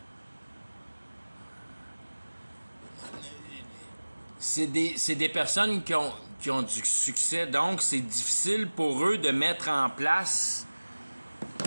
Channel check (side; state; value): both; inverted; correlation -1.00